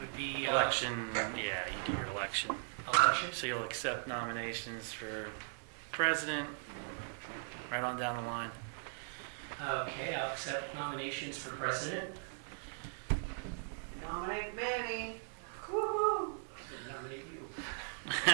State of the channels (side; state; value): left; silent; digital silence